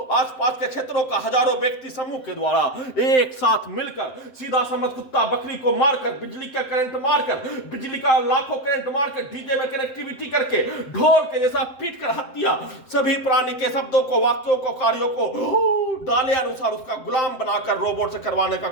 आसपास के क्षेत्रों का हजारों व्यक्ति समूह के द्वारा एक साथ मिलकर सीधा समझ कुत्ता बकरी को मारकर, बिजली का करंट मारकर, बिजली का लाखों करंट मारकर, डीजे में कनेक्टिविटी करके ढोल के जैसा पीट कर हत्या, सभी प्राणी के शब्दों को, वाक्यों को, कार्यों को डाले अनुसार उसका गुलाम बनाकर रोबोट से करवाने का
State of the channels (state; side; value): late; right; 7.8 ms